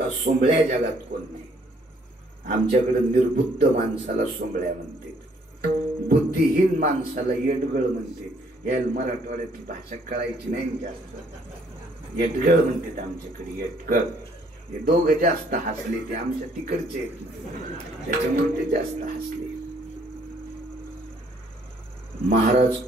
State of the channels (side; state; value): both; normal; correlation 0.64